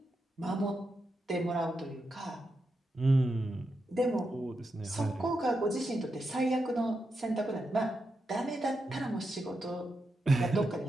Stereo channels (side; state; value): both; normal; correlation 0.86